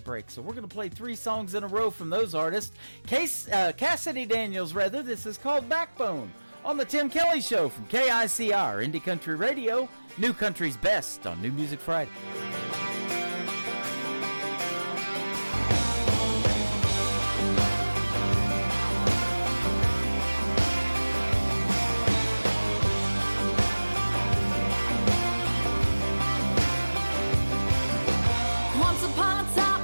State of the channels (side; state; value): both; inverted; correlation -1.00